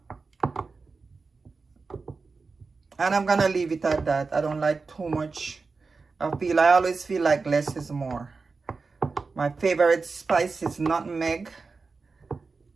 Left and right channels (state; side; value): quieter; left; 4.3 dB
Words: And I'm gonna leave it at that. I don't like too much. I always feel like less is more. My favorite spice is nutmeg,